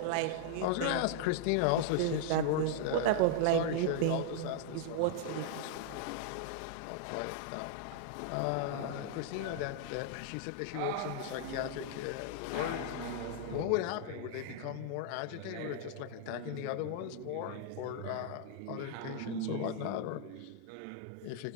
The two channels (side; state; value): both; different; correlation -0.01